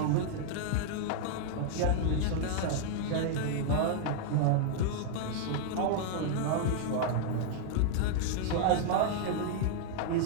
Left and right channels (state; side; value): different; both; correlation -0.01